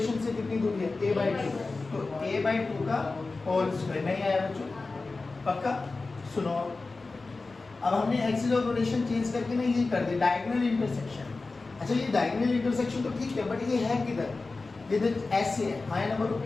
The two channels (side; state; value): right; quieter; 3.7 dB